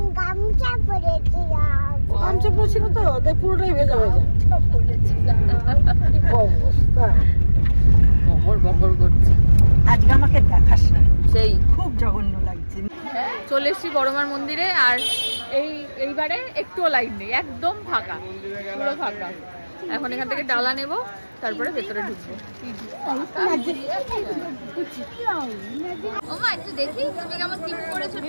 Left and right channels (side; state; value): both; inverted; correlation -1.00